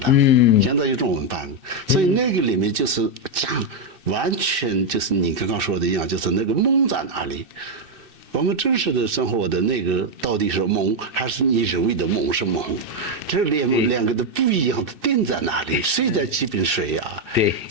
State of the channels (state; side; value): late; left; 2.6 ms